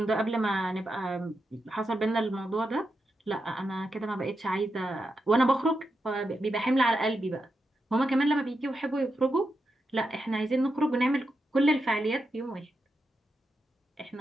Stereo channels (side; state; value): both; normal; correlation 0.86